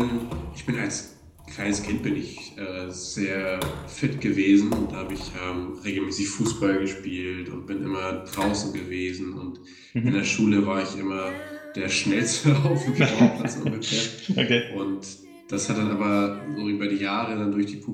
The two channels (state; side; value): identical; both; correlation 1.00